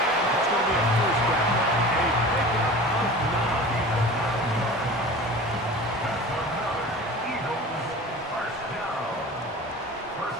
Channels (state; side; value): normal; both; correlation 0.38